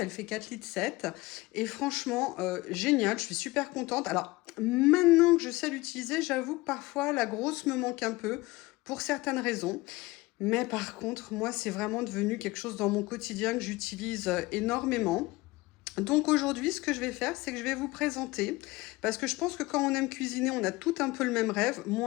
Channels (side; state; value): right; quieter; 21.0 dB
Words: fait 4,7 litres et franchement, génial, je suis super contente. Alors, maintenant que je sais l'utiliser, j'avoue que parfois la grosse me manque un peu pour certaines raisons. Mais par contre, moi, c'est vraiment devenu quelque chose dans mon quotidien que j'utilise, énormément. Donc aujourd'hui, ce que je vais faire, c'est que je vais vous présenter, parce que je pense que quand on aime cuisiner, on a tout un peu le même rêve.